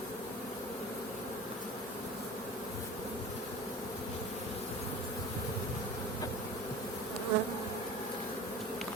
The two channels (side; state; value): both; normal; correlation 0.38